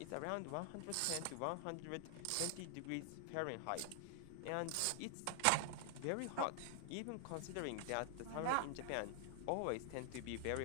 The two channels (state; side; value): different; both; correlation 0.00